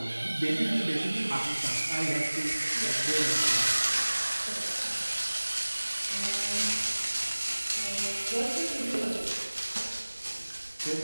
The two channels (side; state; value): both; inverted; correlation -1.00